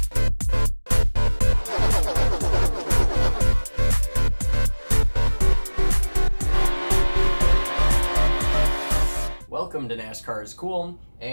Welcome to NASCAR's Cooln,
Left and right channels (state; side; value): inverted; both; correlation -1.00